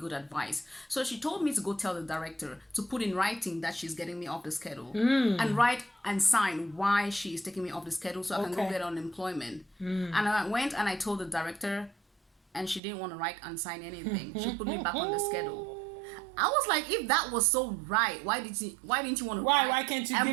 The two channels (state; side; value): drops out; left; at 12.8 s